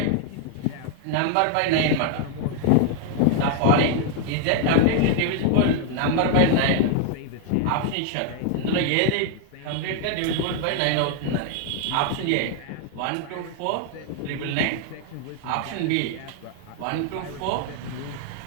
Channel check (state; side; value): different; both; correlation 0.00